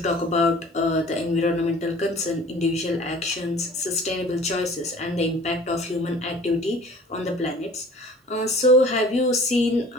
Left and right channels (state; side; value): normal; both; correlation 0.48